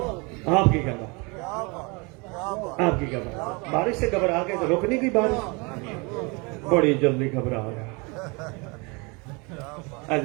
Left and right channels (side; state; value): left; quieter; 29.0 dB